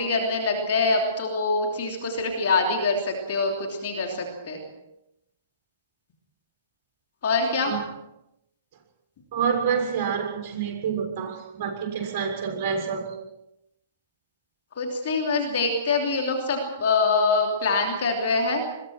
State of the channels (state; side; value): inverted; both; correlation -0.45